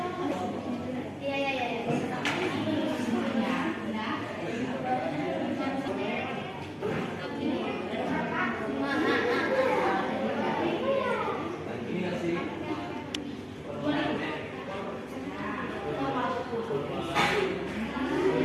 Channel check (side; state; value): both; identical; correlation 1.00